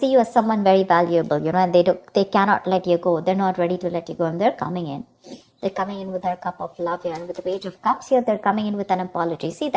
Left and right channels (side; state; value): both; identical; correlation 1.00